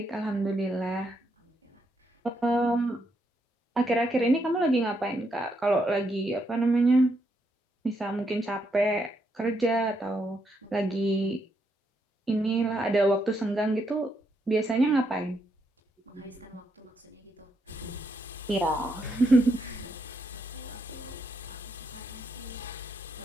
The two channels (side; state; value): both; normal; correlation 0.78